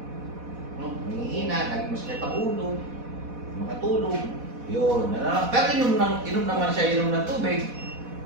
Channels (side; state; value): left; late; 4.1 ms